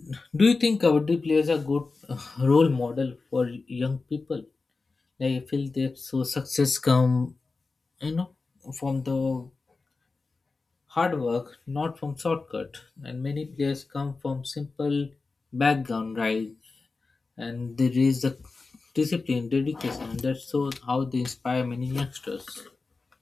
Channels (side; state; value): right; quieter; 4.0 dB